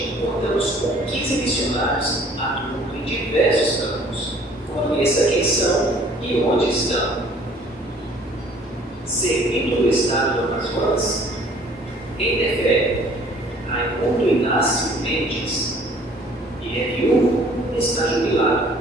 contamos com 15 missionários atuando em diversos campos. Conheça quem são e onde estão. Servindo no estado do Amazonas, em Tefé, Raimundo Inácio Mendes, e é viúvo e está jubilado,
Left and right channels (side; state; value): both; normal; correlation 0.55